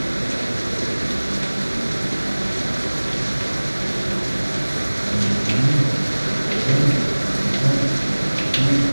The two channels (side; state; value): both; inverted; correlation -1.00